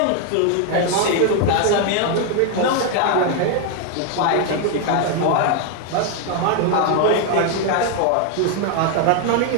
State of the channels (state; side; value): different; both; correlation 0.00